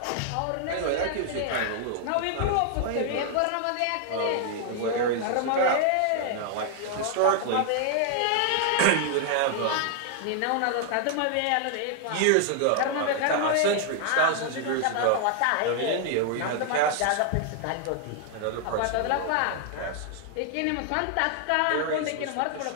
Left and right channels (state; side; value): different; both; correlation 0.00